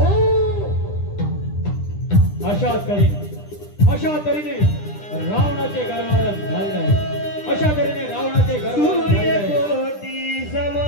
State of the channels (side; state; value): right; late; 9.9 ms